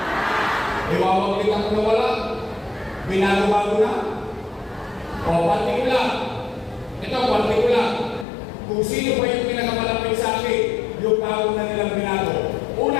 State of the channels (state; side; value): drops out; right; at 8.2 s